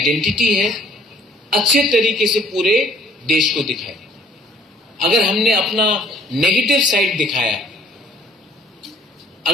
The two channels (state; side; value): normal; both; correlation 0.58